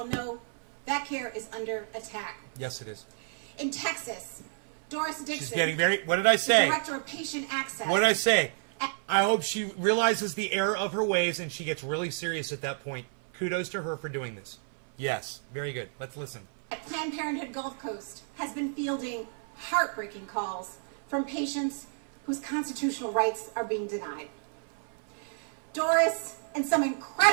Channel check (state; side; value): silent; left; 57 dB below the other